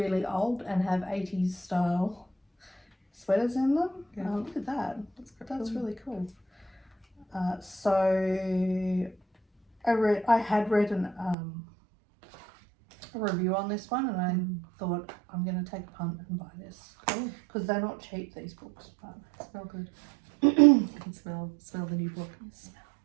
old and have 80s style sweaters in them. Look at that. That's really cool. So I had read a review on this one, and I thought I'm going to take a punt and buy this because they're not cheap, these books, but smell good. You can smell the new book.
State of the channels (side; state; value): left; drops out; at 11.4 s